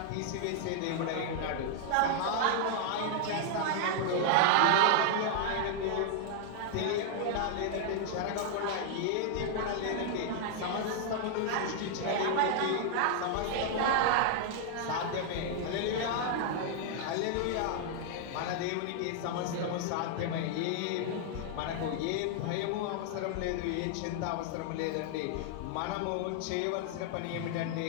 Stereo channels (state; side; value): different; both; correlation -0.01